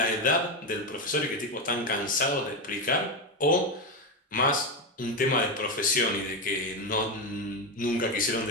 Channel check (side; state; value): both; normal; correlation 0.12